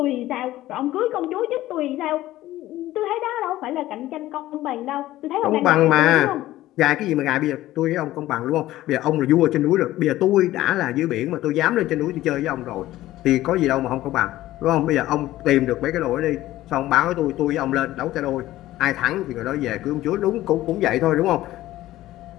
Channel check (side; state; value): right; quieter; 15.4 dB